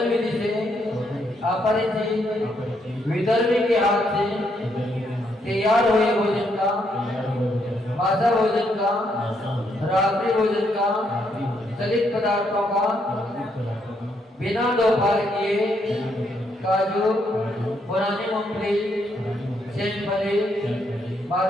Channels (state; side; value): normal; both; correlation 0.75